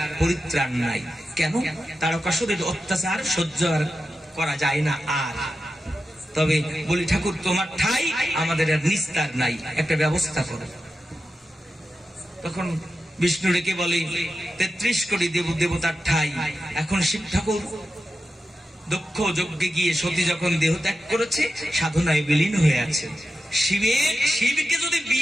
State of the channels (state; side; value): normal; both; correlation 0.91